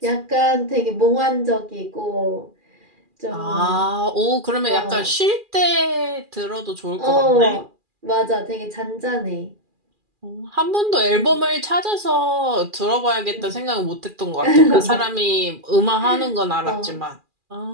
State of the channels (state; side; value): late; left; 2.4 ms